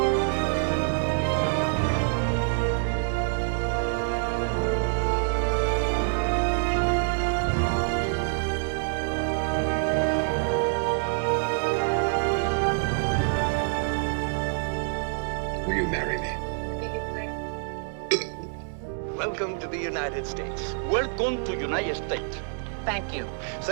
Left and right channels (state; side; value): silent; left; 60 dB below the other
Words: Will you marry me? Welcome to the United States. Welcome to United States. Thank you.